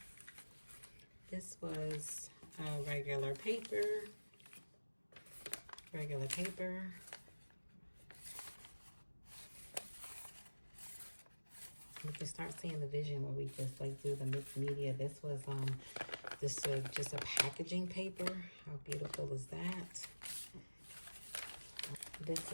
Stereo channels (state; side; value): inverted; both; correlation -1.00